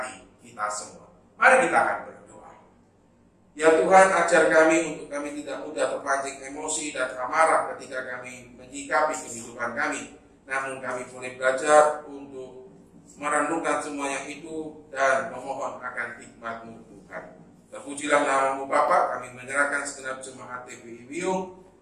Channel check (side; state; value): both; identical; correlation 1.00